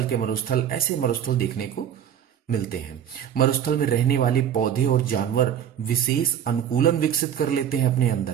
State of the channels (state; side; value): quieter; left; 9.4 dB